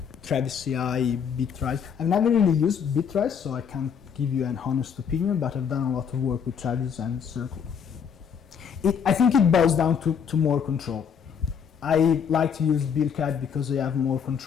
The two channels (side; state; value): right; quieter; 7.2 dB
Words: Travis CI, Bitrise. I've never really used Bitrise, so I can't give you an honest opinion, but I've done a lot of work with Travis and Circle. I think it boils down to more control. I like to use BuildKite because I have more